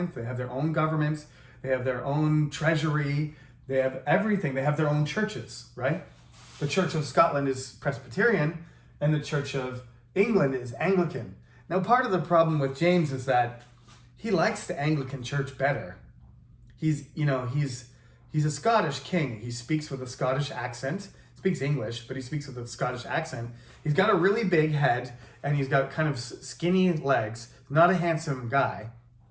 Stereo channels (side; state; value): both; identical; correlation 1.00